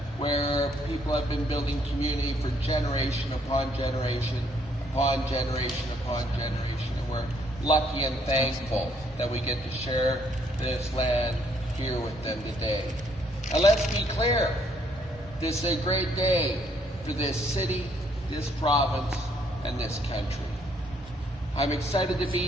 where people have been building community for generation upon generation, upon generation upon generation, and we're lucky and thankful that we get to share this land here with them today. Now let's be clear, this is a great day for this city, this province, and this country. I'm excited to be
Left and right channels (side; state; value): both; normal; correlation 0.68